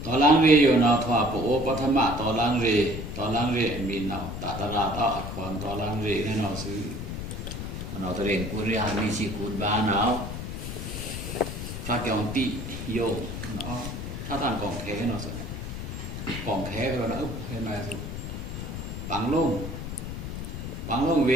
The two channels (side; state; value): left; noise; rumble, 6 dB below the sound